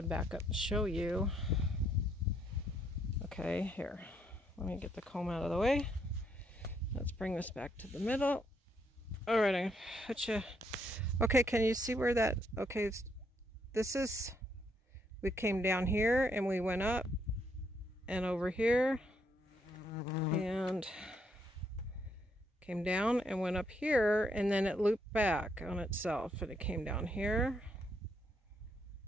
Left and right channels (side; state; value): both; normal; correlation 0.74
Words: to back up and show you. Okay, here, let me get the comb out of the way. Let's bring this back to the middle. All right, I'm gonna put you. Okay, can you see where that? Okay, this is. We came down here and we went up and over here and came down and went up here, and then it looped back on itself, and it came down here,